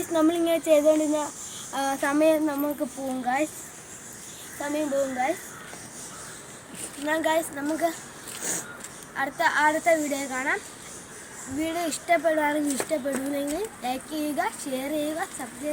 നമ്മളിങ്ങനെ ചെയ്തുകൊണ്ടിരുന്ന സമയം പോകും ഗൈസ്. എന്നാൽ ഗൈസ് നമുക്ക് അടുത്ത വീഡിയോ കാണാം. വീഡിയോ ഇഷ്ടപ്പെടുകയാണെങ്കിൽ ലൈക്ക് ചെയ്യുക, ഷെയർ ചെയ്യുക,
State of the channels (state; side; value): identical; both; correlation 1.00